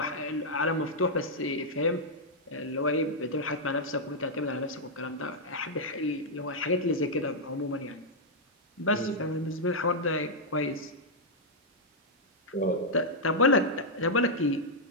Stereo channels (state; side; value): normal; both; correlation -0.05